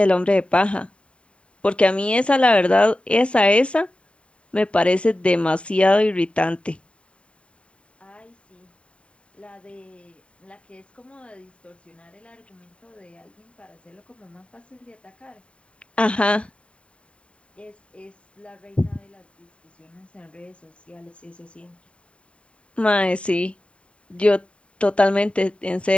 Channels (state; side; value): late; right; 0.060 ms